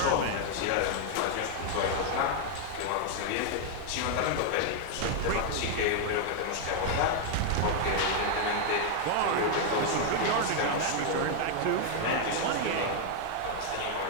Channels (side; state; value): both; different; correlation 0.00